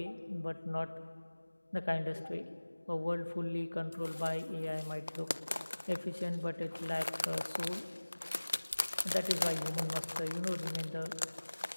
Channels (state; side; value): inverted; both; correlation -1.00